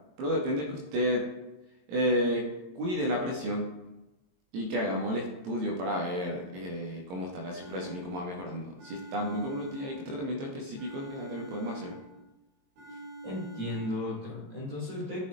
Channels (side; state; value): left; late; 22 ms